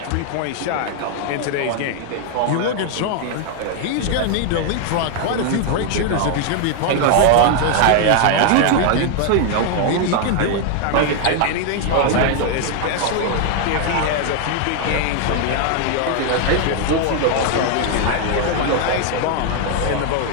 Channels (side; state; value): both; different; correlation 0.00